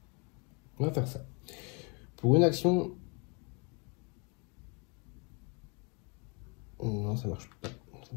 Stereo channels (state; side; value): quieter; right; 33.8 dB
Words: On va faire ça. Pour une action... Non, ça marche pas. Ça